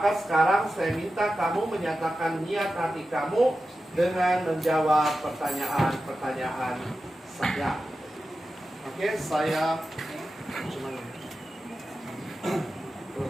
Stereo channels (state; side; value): normal; both; correlation 0.92